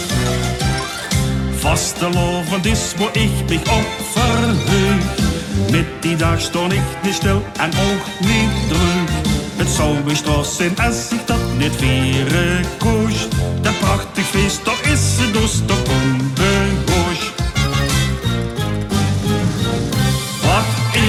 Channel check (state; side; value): identical; both; correlation 1.00